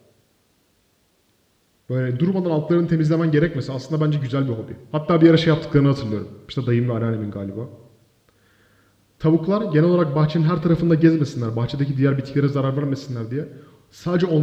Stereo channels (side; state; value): both; identical; correlation 1.00